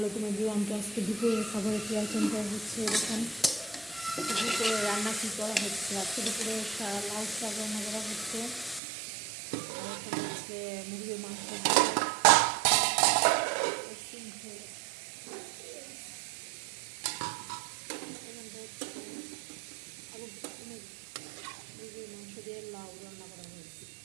এভরিওয়ান। তো আজকে দুপুরের খাবারের কি আইটেমটা হচ্ছে এরকম। দুপুরে রান্না কী করা হচ্ছে, আজকে দুপুরে লাউ শাক রান্না করা হচ্ছে। আর এখন হচ্ছে মুরগির মাংস মুরগির মাংস দিয়ে লাউ রান্না করা হয়েছে।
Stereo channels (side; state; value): left; drops out; at 8.8 s